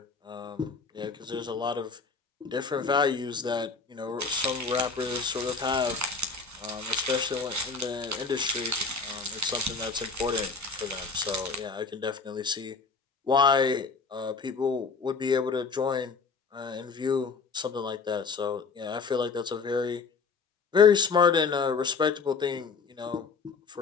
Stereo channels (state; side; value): quieter; right; 4.7 dB